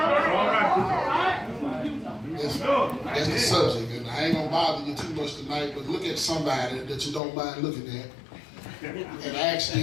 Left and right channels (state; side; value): drops out; right; at 7.2 s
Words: That's the subject, and I ain't going to bother you too much tonight, but look at somebody that you don't mind looking at and ask